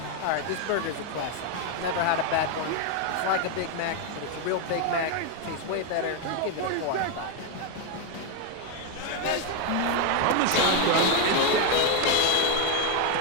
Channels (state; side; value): different; both; correlation 0.01